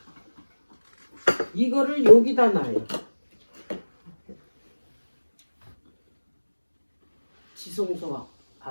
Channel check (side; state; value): both; inverted; correlation -1.00